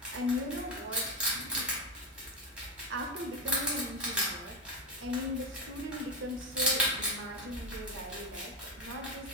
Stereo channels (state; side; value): normal; both; correlation 0.11